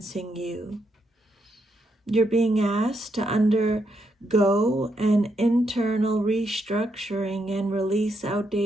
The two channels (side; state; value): both; normal; correlation 0.79